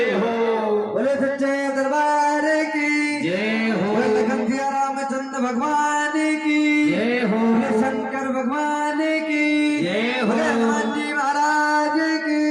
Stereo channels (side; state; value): both; identical; correlation 1.00